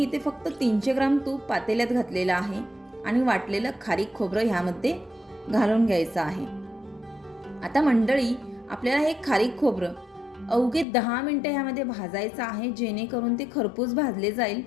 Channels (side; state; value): right; drops out; at 10.9 s